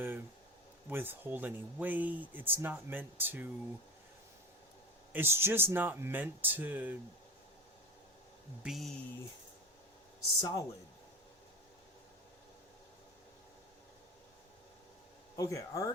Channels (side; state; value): both; normal; correlation 0.26